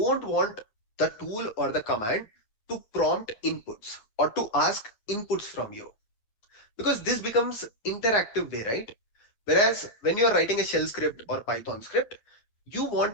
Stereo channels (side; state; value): right; late; 9.4 ms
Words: want the tool or the command to prompt inputs or to ask inputs from you, because this becomes interactive right? Whereas when you are writing a shell script or Python script, you